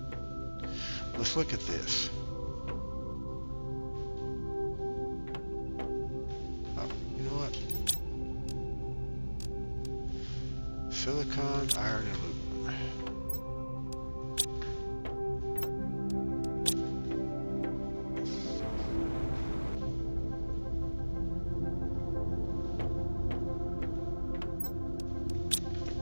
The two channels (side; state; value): both; inverted; correlation -1.00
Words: Let's look at this. Oh, you know what? Silicon, iron, and aluminum.